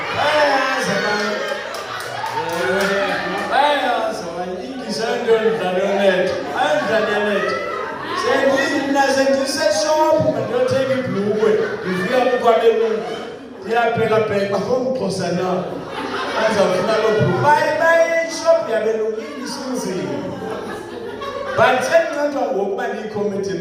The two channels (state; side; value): identical; both; correlation 1.00